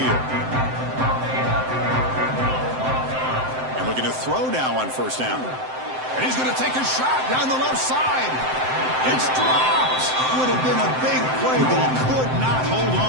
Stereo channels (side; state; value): left; late; 7.7 ms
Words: And looking to throw now on 1st down. And he's going to take a shot down the left side. It's dropped. Would have been a big play, but he could not hold